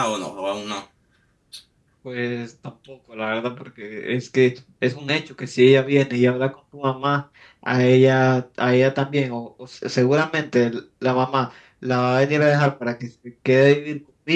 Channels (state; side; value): identical; both; correlation 1.00